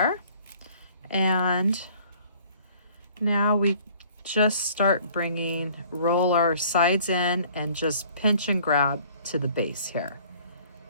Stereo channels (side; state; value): both; inverted; correlation -0.55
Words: And now we just start roll our sides in and just pinch and grab to the base here.